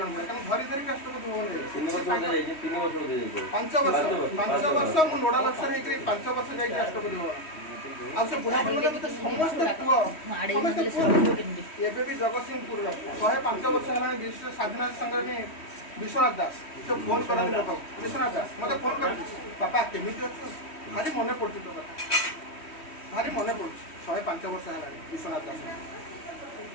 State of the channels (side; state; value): right; late; 3.1 ms